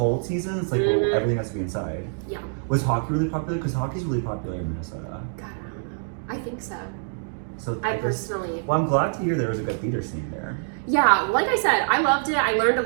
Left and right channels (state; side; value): silent; left; digital silence